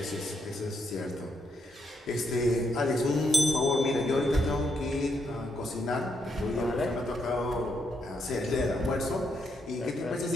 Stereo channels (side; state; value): both; normal; correlation 0.78